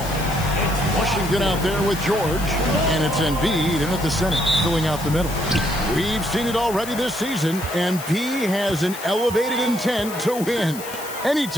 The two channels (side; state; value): left; noise; hiss, 12 dB below the sound